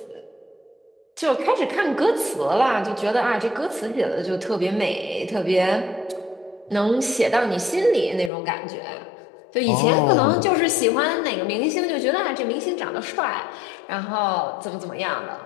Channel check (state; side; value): drops out; right; at 8.3 s